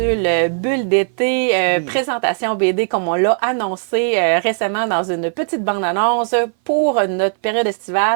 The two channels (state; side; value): silent; left; 59 dB below the other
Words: bulle d'été, présentation BD comme on l'a annoncé récemment dans une petite bande-annonce pour notre période